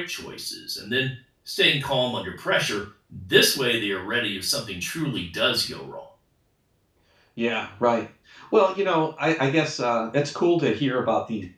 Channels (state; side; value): identical; both; correlation 1.00